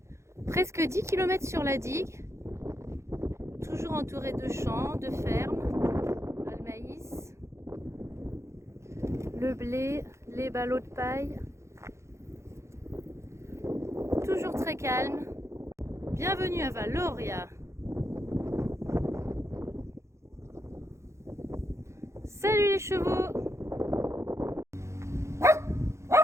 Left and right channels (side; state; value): left; late; 0.14 ms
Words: Presque 10 km sur la digue, toujours entouré de champs, de fermes, le maïs, le blé, les ballots de paille. Toujours très calme. Bienvenue à Valoria. Salut les chevaux!